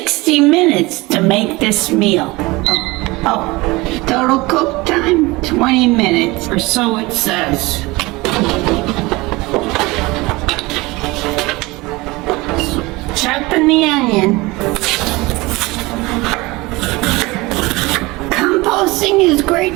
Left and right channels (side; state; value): left; quieter; 22.3 dB